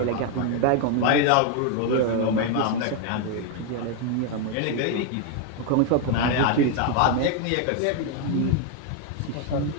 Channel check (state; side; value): different; both; correlation 0.01